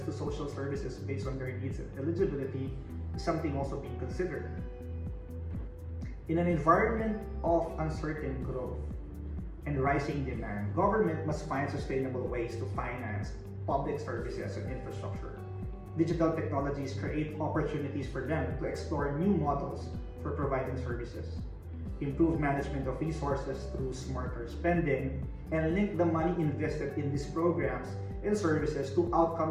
to social services based on their needs and eligibility is something also being considered. In an environment of uncertain growth and rising demand, government must find sustainable ways to finance public services and infrastructure. Digital technologies create opportunities for them to explore new models for providing services, improve management of resources through smarter spending, and link the money invested in these programs and services to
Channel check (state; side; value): identical; both; correlation 1.00